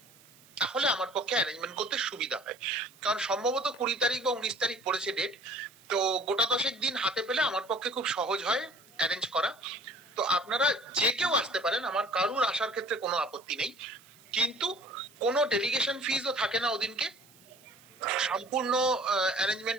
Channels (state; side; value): noise; right; hiss, 26 dB below the sound